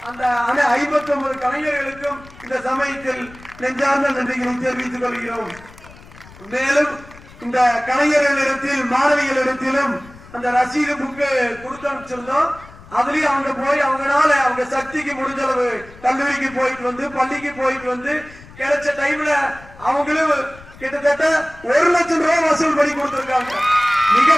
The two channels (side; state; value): left; noise; rumble, 21 dB below the sound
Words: அந்த 59 கலைஞர்களுக்கும் இந்த சமயத்தில் நெஞ்சார்ந்த நன்றிகளை தெரிவித்துக் கொள்கிறோம். மேலும் இந்த கலைஞர்களிடத்தில் மாணவிகளிடத்திலும் அந்த ரசீது புக்கு கொடுத்து அனுப்பிச்சிருந்தோம். அதுலயும் அவங்க போய் அவங்களால அவங்க சக்திக்கு முடிஞ்ச அளவு கல்லூரிக்கு போயிட்டு வந்து பள்ளிக்கு போயிட்டு வந்து கிடைச்ச டைம்ல அவங்களும் கிட்டத்தட்ட 1 லட்சம் ரூபாய் வசூல் பண்ணி கொடுத்திருக்காங்க.